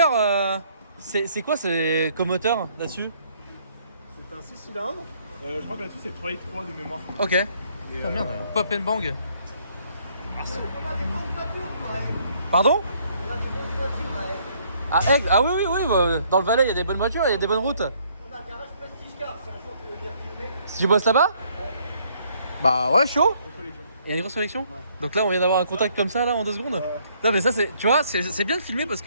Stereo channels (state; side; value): inverted; both; correlation -0.66